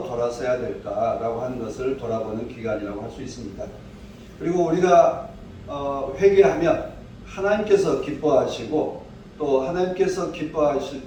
돌아서야 될까라고 하는 것을 돌아보는 기간이라고 할 수 있습니다. 그리고 우리가 회개하면 하나님께서 기뻐하시고 또 하나님께서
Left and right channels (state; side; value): identical; both; correlation 1.00